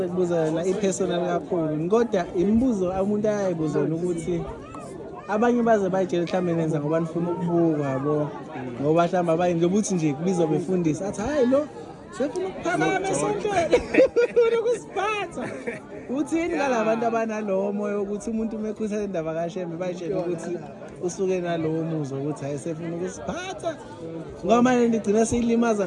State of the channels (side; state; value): both; identical; correlation 1.00